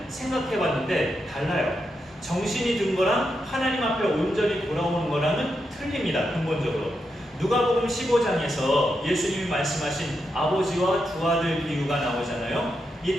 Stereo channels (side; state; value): both; normal; correlation 0.85